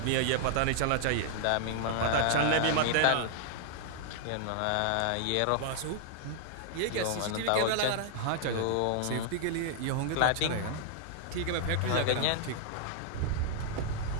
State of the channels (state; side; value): different; both; correlation -0.01